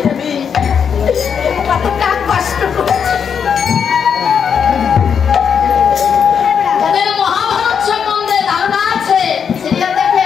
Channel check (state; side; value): quieter; right; 7.1 dB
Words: দেবী কতটা কষ্ট করেছে। মহাভারত সম্বন্ধে ধারণা আছে, সিরিয়াল